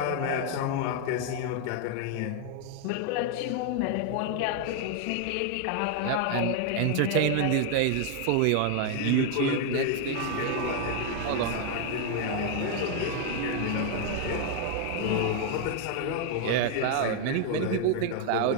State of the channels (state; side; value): different; both; correlation 0.00